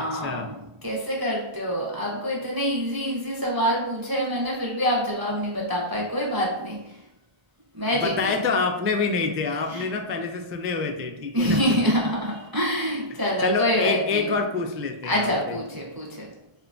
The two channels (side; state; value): left; late; 1.0 ms